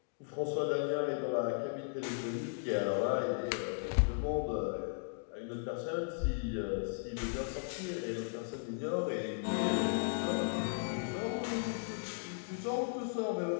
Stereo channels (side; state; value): right; silent; digital silence